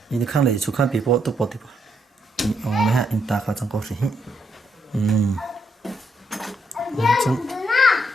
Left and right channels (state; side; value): normal; both; correlation 0.76